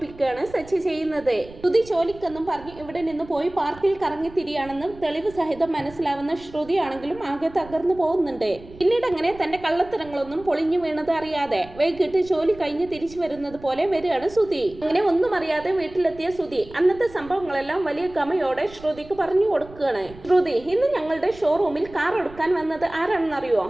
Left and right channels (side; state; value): right; noise; rumble, 19 dB below the sound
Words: സച്ചി ചെയ്യുന്നത്. ശ്രുതി ജോലിക്കെന്നും പറഞ്ഞ് ഇവിടെ നിന്ന് പോയി പാർക്കിൽ കറങ്ങി തിരിയാണെന്നും തെളിവ് സഹിതം മനസ്സിലാവുന്ന ശ്രുതിയാണെങ്കിലും ആകെ തകർന്നു പോകുന്നുണ്ട്. പിന്നീട് അങ്ങനെ തന്റെ കള്ളത്തരങ്ങളൊന്നും പൊളിഞ്ഞു വീണത് അറിയാതെ വൈകിട്ട് ജോലി കഴിഞ്ഞ് തിരിച്ചു വരുന്നത് പോലെ വരികയാണ് ശ്രുതി. അങ്ങനെ ഒന്നും അറിയാതെ വീട്ടിലെത്തിയ ശ്രുതി അന്നത്തെ സംഭവങ്ങളെല്ലാം വലിയ ഗമയോടെ ശ്രുതിക്ക് പറഞ്ഞു കൊടുക്കുകയാണ്. ശ്രുതി, ഇന്ന് ഞങ്ങളുടെ ഷോറൂമിൽ കാർ എടുക്കാൻ വന്നത് ആരാണെന്നറിയോ?